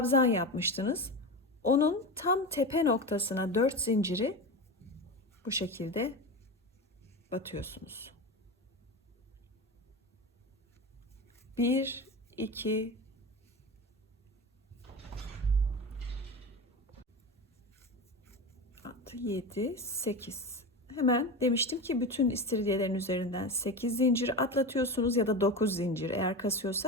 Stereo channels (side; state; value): both; normal; correlation 0.24